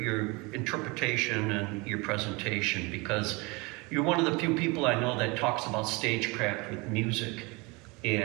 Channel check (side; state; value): left; quieter; 26.4 dB